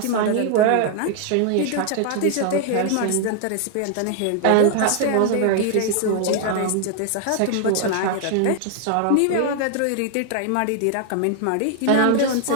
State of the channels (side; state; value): both; different; correlation 0.00